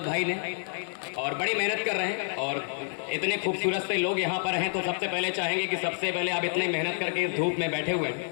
भाई ने, और बड़ी मेहनत कर रहे हैं। और इतने खूबसूरत से लोग यहाँ पर हैं, तो सबसे पहले चाहेंगे कि सबसे पहले आप इतनी मेहनत करके इस धूप में बैठे हुए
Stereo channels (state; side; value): silent; right; 59 dB below the other